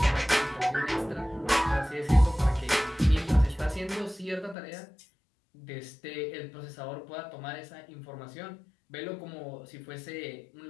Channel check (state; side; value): drops out; right; at 4.5 s